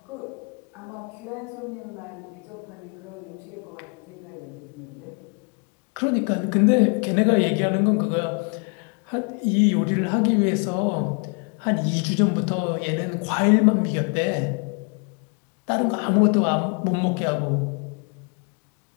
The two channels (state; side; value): quieter; right; 36.8 dB